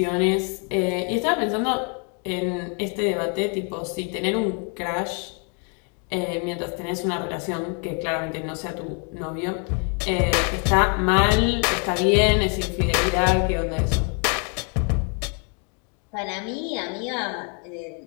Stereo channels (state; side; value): quieter; right; 38.4 dB